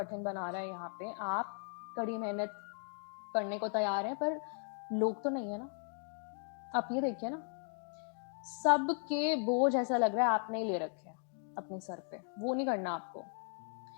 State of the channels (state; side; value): silent; right; 53 dB below the other